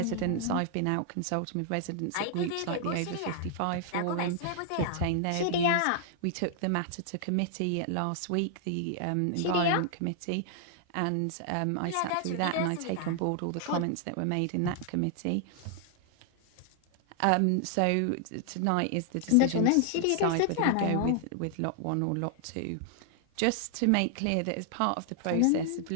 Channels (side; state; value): both; different; correlation 0.00